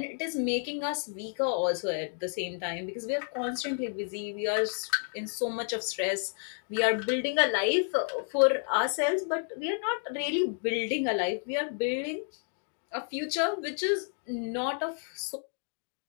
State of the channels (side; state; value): right; silent; 57 dB below the other